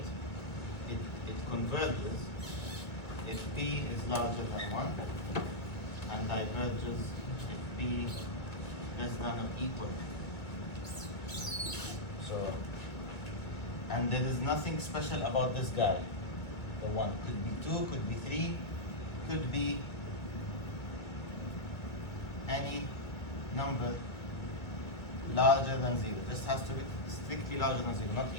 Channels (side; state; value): right; late; 1.7 ms